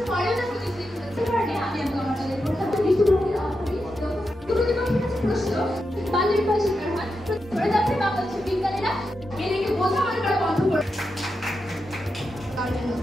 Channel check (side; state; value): both; normal; correlation 0.87